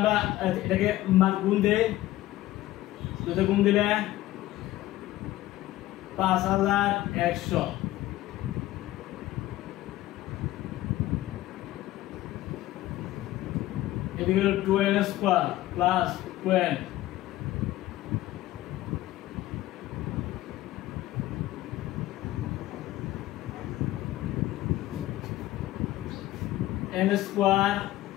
এটাকে মান গুণ দেই, দুটো গুণ দিলে 5100, এদিকে হলো 2n square plus 2n n square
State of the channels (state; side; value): quieter; right; 15.8 dB